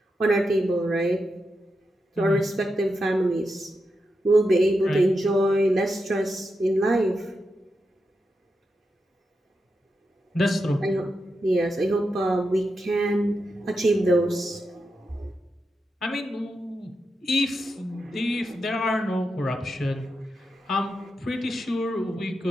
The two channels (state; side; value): normal; both; correlation 0.87